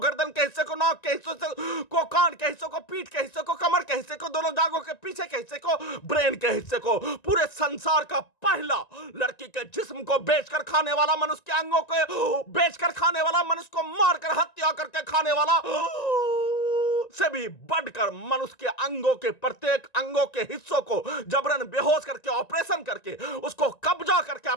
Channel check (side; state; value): right; late; 1.9 ms